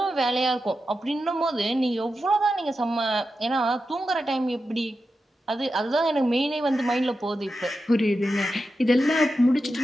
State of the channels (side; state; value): both; normal; correlation 0.90